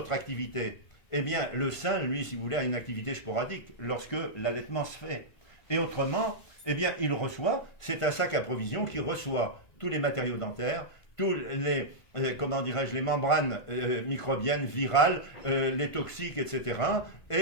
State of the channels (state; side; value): late; right; 1.9 ms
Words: activités, eh bien, le sein, lui, si vous voulez, a une activité sporadique lorsque l'allaitement se fait. Et autrement, eh bien, il reçoit, c'est un sac à provision qui reçoit tous les matériaux dentaires, tous les, comment dirais-je, les membranes microbiennes, virales, les toxiques, etc.